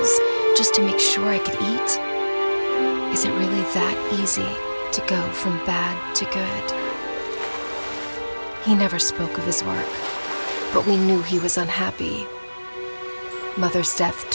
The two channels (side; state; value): both; inverted; correlation -1.00